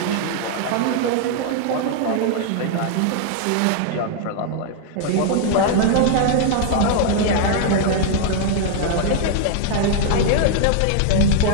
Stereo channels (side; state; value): both; different; correlation 0.00